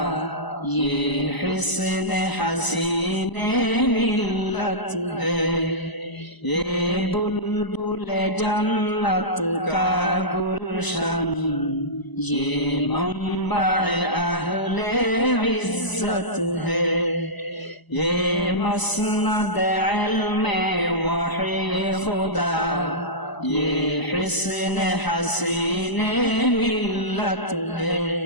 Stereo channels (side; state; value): right; late; 1.0 ms